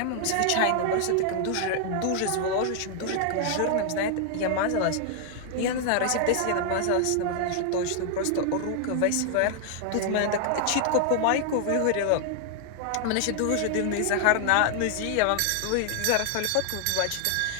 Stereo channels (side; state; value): both; different; correlation 0.00